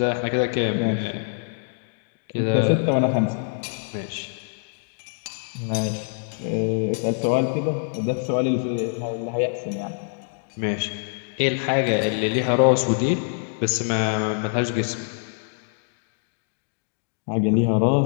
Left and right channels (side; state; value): right; silent; digital silence